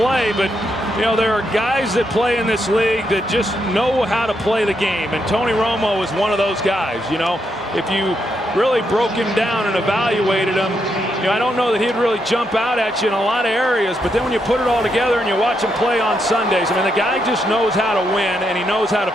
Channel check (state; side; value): normal; both; correlation 0.80